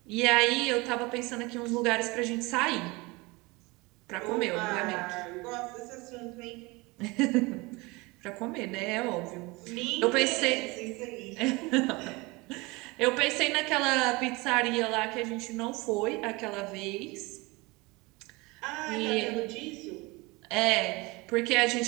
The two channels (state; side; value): quieter; left; 24.3 dB